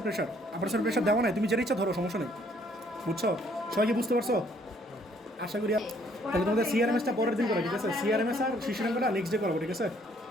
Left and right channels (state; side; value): normal; both; correlation 0.64